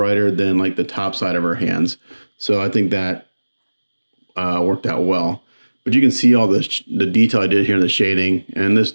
than like the top side of her hands. So I think that worked out well. But you can see all the detail I did here in the shading, and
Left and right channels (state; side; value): inverted; both; correlation -1.00